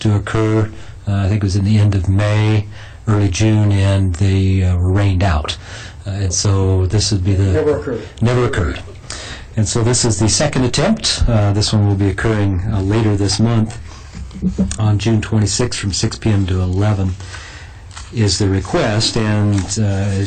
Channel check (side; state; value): both; identical; correlation 1.00